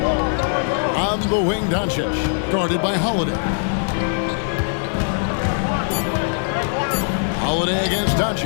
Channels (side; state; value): right; silent; 65 dB below the other